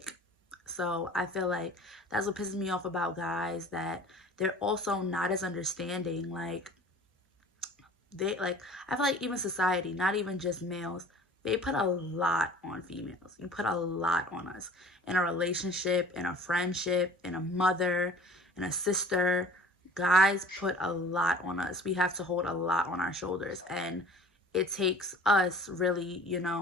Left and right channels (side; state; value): both; normal; correlation 0.46